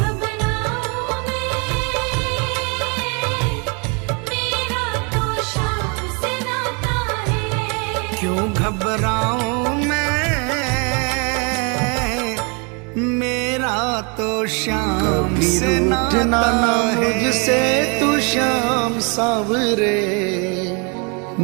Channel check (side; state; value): left; quieter; 33.9 dB